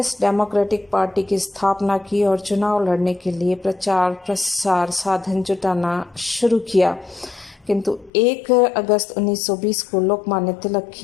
डेमोक्रेटिक पार्टी की स्थापना की और चुनाव लड़ने के लिए प्रचार प्रसार साधन जुटाना शुरू किया। किंतु 1 अगस्त 1920 को लोकमान्य तिलक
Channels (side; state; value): right; drops out; at 8.1 s